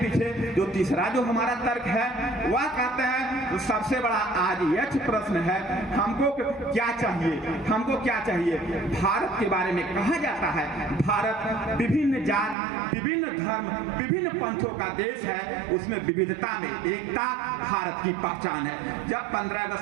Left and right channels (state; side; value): drops out; left; at 12.6 s